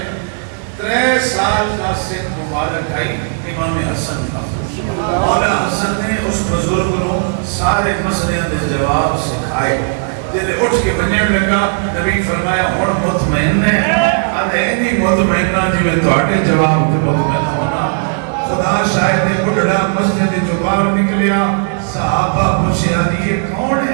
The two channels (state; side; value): silent; left; 66 dB below the other